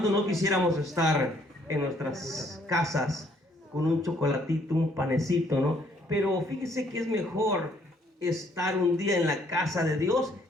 no quisiéramos estar en nuestras casas con un chocolatito, un panecito, ¿no? Pero fíjese que es mejor estar un día en la casa de Dios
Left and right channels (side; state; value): both; normal; correlation 0.65